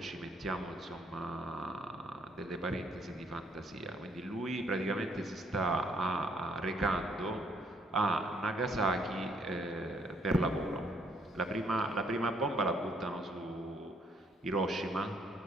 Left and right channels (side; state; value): both; normal; correlation 0.68